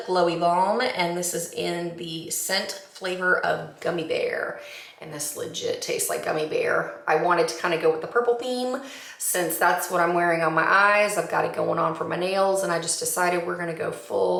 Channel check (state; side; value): identical; both; correlation 1.00